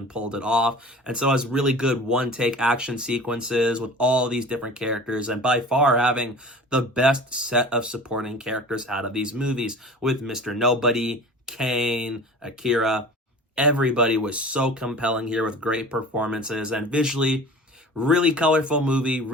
pulled it off. And so it has really good one-take action sequences with all these different characters, and by far having the best set of supporting characters out of these movies with Mr. Nobody, Kane, Akira. Everybody was so compelling here with great performances, and visually, really colorful movie,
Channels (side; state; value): both; normal; correlation 0.40